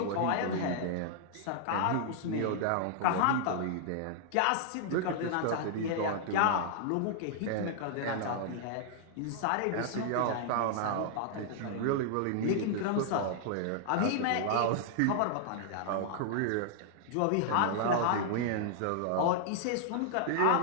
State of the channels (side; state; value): both; different; correlation -0.01